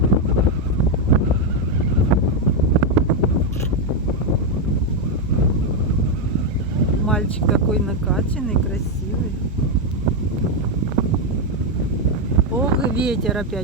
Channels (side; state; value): both; normal; correlation 0.03